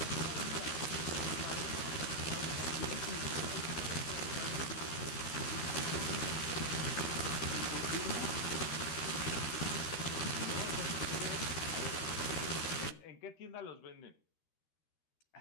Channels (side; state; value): right; late; 13 ms